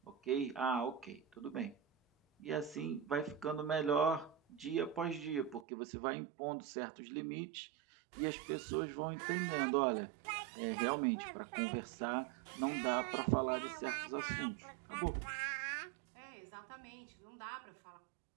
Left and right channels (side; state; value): left; drops out; at 5.7 s